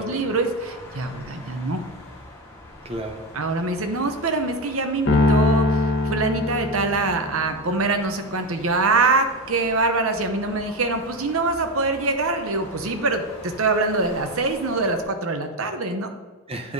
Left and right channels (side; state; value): both; normal; correlation 0.15